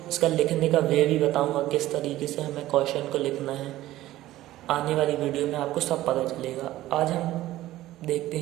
इसका लिखने का वे भी बताऊंगा, किस तरीके से हमें क्वेश्चन को लिखना है। आने वाली वीडियो में आपको सब पता चलेगा। आज हम देखते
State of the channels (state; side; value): quieter; left; 15.4 dB